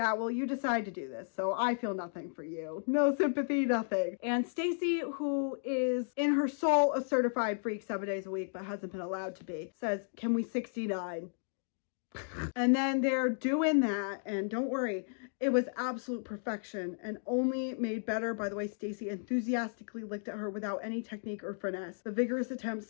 well, you decide to do this, so I feel nothing for you. No sympathy, nothing. And Stacy, who is in her soul a certified freak 7 days a week, but hasn't been allowed to be, says, can we 69? And then they're doing that, and don't worry, it was absolute perfection and only made better by the way Stacy enthusiastically licked at her without any technique or finesse. The vigorous attempt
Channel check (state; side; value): silent; right; digital silence